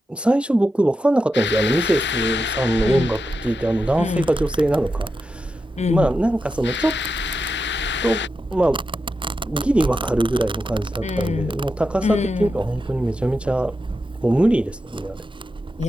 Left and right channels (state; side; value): normal; both; correlation 0.89